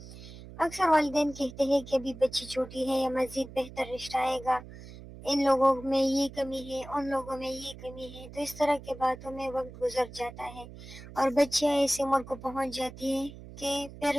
اکثر والدین کہتے ہیں کہ ابھی بچی چھوٹی ہے یا مزید بہتر رشتہ آئے گا، ان لوگوں میں یہ کمی ہے، ان لوگوں میں یہ کمی ہے، تو اس طرح کی باتوں میں وقت گزر جاتا ہے اور بچیاں ایسی عمر کو پہنچ جاتی ہیں کہ پھر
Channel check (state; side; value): noise; right; hum, 15 dB below the sound